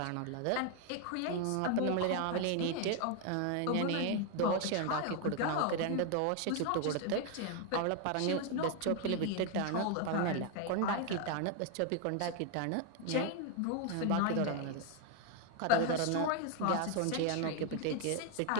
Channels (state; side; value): different; both; correlation 0.01